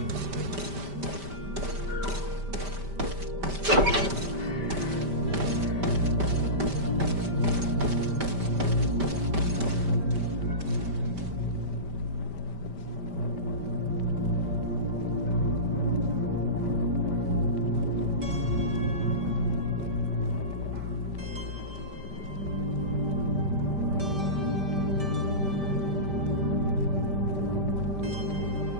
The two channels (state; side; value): late; left; 5.1 ms